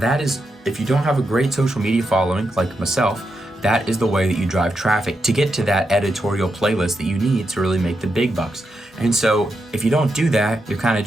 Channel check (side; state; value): both; normal; correlation 0.85